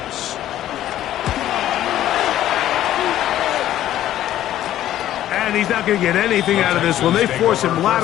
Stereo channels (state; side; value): quieter; right; 12.7 dB